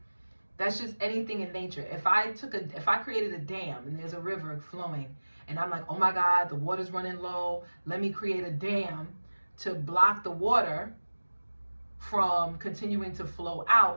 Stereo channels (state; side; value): inverted; both; correlation -1.00